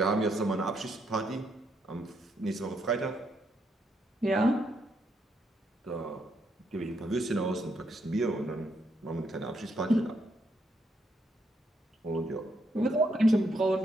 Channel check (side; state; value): both; normal; correlation 0.76